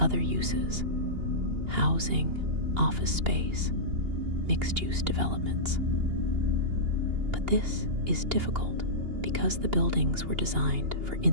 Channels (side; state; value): left; late; 2.8 ms